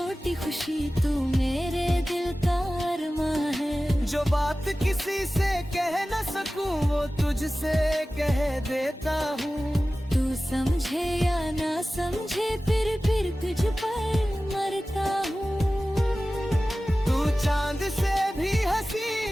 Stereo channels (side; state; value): both; normal; correlation 0.96